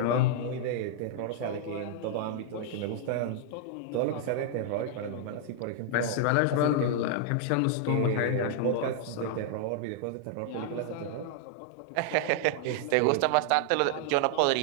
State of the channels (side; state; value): both; different; correlation 0.00